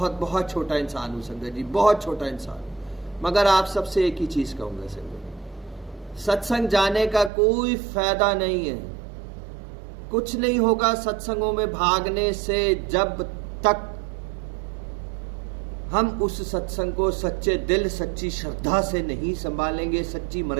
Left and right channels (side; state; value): left; drops out; at 7.3 s